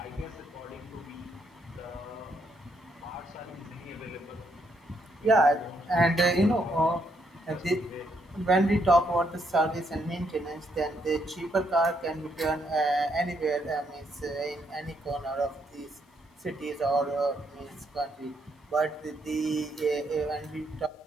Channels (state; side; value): normal; both; correlation 0.75